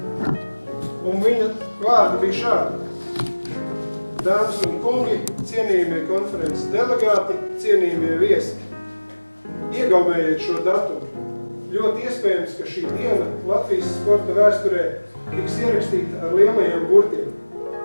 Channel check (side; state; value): both; inverted; correlation -1.00